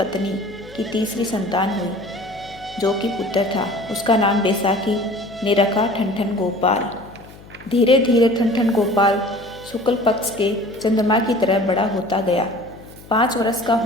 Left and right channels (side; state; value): left; noise; hum, 20 dB below the sound